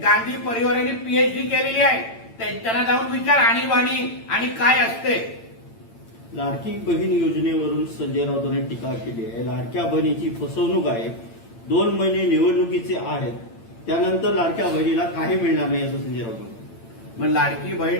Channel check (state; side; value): late; right; 8.9 ms